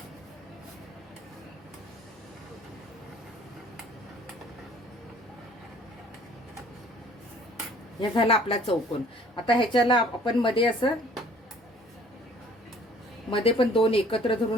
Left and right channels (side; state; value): both; normal; correlation 0.54